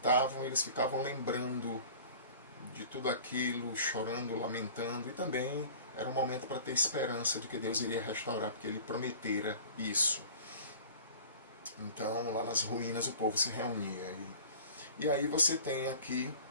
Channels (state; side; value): inverted; both; correlation -0.44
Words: eles ficavam lembrando de tudo aquilo, chorando, lamentando, e também era um momento para ter esperança de que Deus iria restaurar, porque ele prometera isso. Então, lá nas ruínas o povo se reunia. E aí você tem aqui,